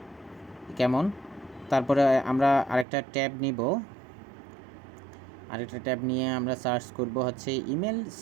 কেমন। তারপরে আমরা আরেকটা ট্যাব নিয়ে আমরা সার্চ করব হচ্ছে ইমেল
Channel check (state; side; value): drops out; left; at 2.9 s